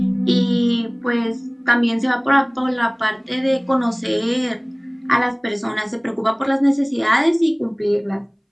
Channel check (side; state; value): both; identical; correlation 1.00